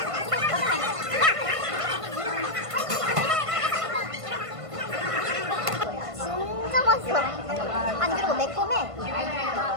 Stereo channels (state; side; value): late; left; 1.5 ms